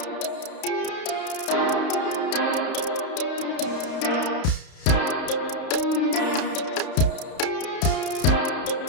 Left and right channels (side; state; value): right; late; 32 ms